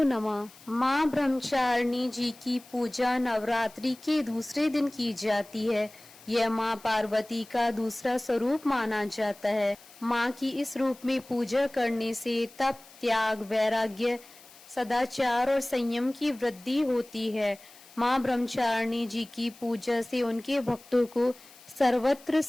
नमः। माँ ब्रह्मचारिणी जी की पूजा नवरात्रि के दूसरे दिन की जाती है। यह माँ पार्वती का दूसरा स्वरूप माना जाता है। माँ की इस रूप में पूजा करने से तप, त्याग, वैराग्य, सदाचार और संयम की वृद्धि होती है। माँ ब्रह्मचारिणी जी की पूजा से उनके भक्तों को सर्वत्र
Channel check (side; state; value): left; noise; hiss, 22 dB below the sound